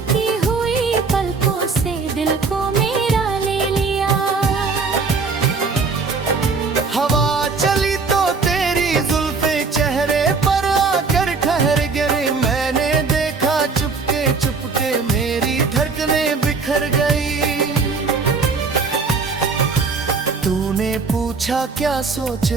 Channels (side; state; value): left; quieter; 4.5 dB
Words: हुई पलकों से दिल को मेरा ले लिया। हवा चली तो तेरी जुल्फे चेहरे पर आकर ठहर गिरी। मैंने देखा चुपके चुपके मेरी धड़कनें बिखर गई। तूने पूछा क्या सोच